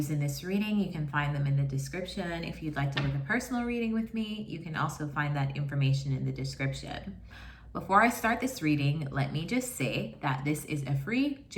in this reading, you can find them in the description. If you'd like to book a personal reading with me, you can also find that information in the description. Before I start this reading, let me just say that this is a free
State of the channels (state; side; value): identical; both; correlation 1.00